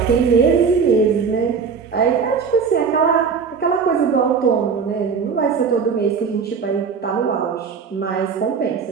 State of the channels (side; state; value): left; quieter; 5.9 dB